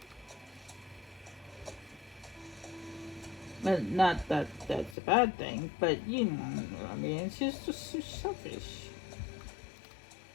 But not that that's a bad thing, but you know, I mean, it's just so selfish.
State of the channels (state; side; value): drops out; right; at 5.0 s